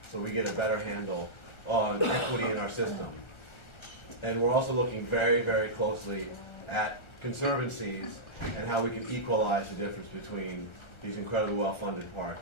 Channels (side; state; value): right; late; 1.4 ms